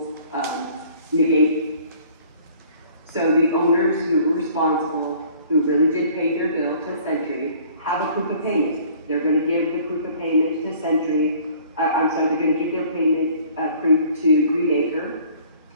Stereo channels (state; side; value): inverted; both; correlation -0.53